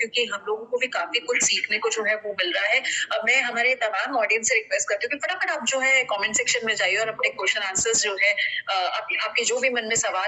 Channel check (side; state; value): both; identical; correlation 1.00